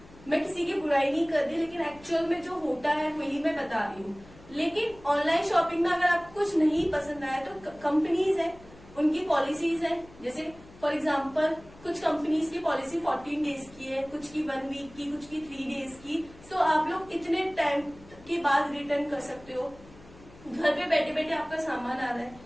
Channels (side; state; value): left; noise; hum, 22 dB below the sound